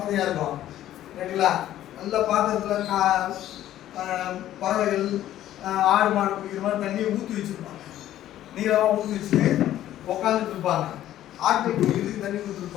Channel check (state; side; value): quieter; right; 12.8 dB